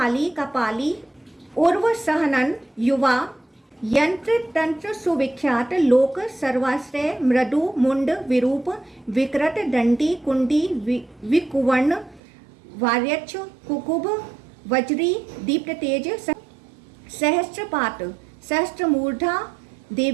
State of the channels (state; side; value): drops out; left; at 12.2 s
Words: कपाली, उर्व, सहनन, युवा, यंत्र, तंत्र, सुविख्यात, लोक, सर्वाश्रय, मृदु, मुंड, विरूप, विकृत, दंडी, कुंडी, विकुवर्ण, वार्यक्ष, कुकुभ, वज्री, दीप्त तेज, सहस्त्रपात, सहस्त्रमूर्धा,